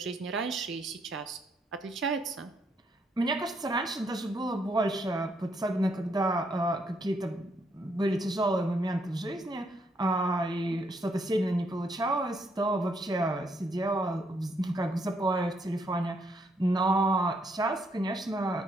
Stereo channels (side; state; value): both; normal; correlation 0.74